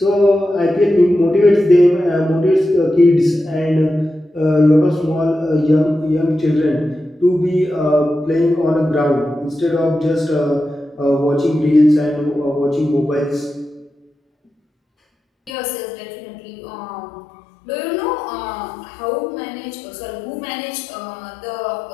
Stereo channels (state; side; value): drops out; right; at 15.5 s